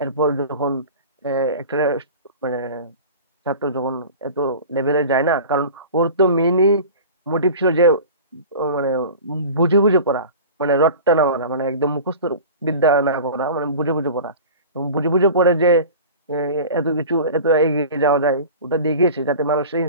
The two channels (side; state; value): both; inverted; correlation -0.37